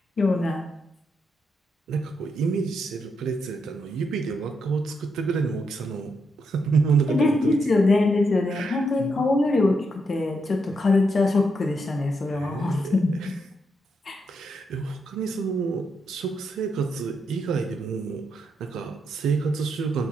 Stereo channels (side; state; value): both; normal; correlation 0.81